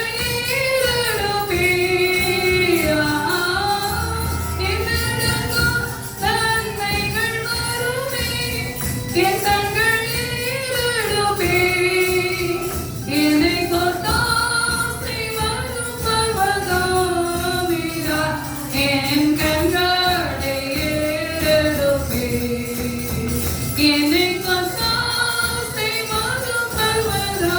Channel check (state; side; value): identical; both; correlation 1.00